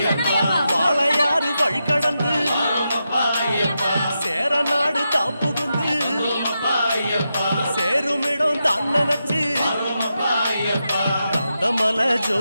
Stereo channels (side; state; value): both; inverted; correlation -0.87